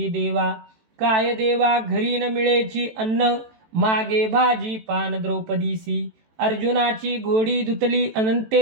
देवा. काय देवा घरी न मिळेची अन्न, मागे भाजी पान द्रौपदीसी. अर्जुनाची घोडी धुतली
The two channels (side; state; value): left; late; 18 ms